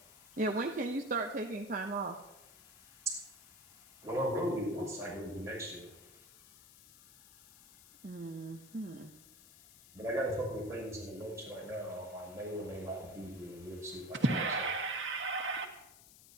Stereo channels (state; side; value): noise; left; hiss, 20 dB below the sound